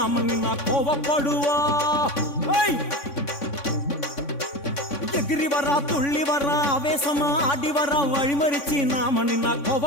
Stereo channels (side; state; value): right; late; 3.5 ms